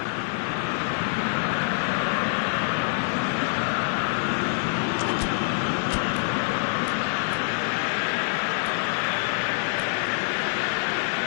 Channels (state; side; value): silent; right; 61 dB below the other